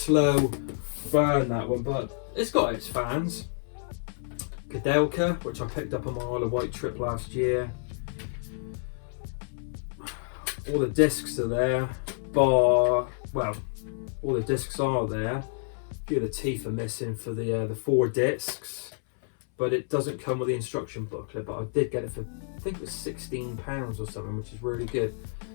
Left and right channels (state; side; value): silent; right; 59 dB below the other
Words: burn, that one, but it's got its fans. Kadelka, which I picked up on my Isle of Wight trip last year. All the discs are there, well, all the discs are there. A few of the teeth are missing for the 4 discs, but it doesn't come with the instruction booklet. But I did get it for, I think it was £16 or something, which is really good.